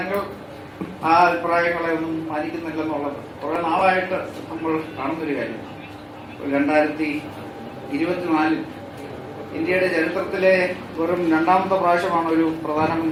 ആ അഭിപ്രായങ്ങളെ ഒന്നും പാലിക്കുന്നില്ലെന്നുള്ളത് കുറെ നാളായിട്ട് നമ്മൾ കാണുന്നൊരു കാര്യമാണ്. 2024 ഇന്ത്യയുടെ ചരിത്രത്തിലെ വെറും രണ്ടാമത്തെ പ്രാവശ്യമാണ് ഒരു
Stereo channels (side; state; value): both; identical; correlation 1.00